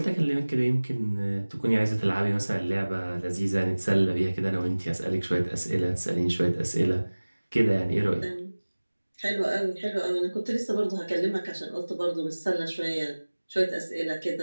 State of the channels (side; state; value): both; inverted; correlation -1.00